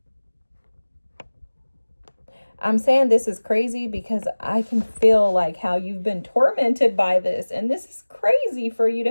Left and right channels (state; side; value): inverted; both; correlation -1.00